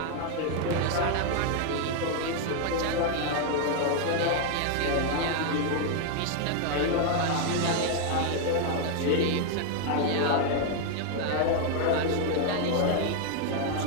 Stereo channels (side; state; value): both; different; correlation 0.00